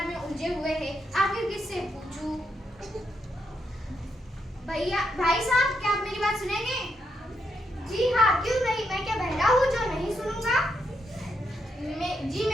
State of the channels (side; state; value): both; normal; correlation 0.80